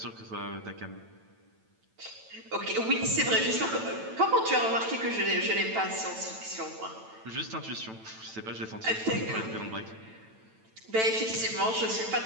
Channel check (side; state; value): left; late; 9.0 ms